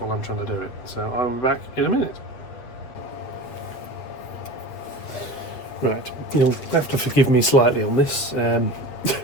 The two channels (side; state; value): right; late; 8.1 ms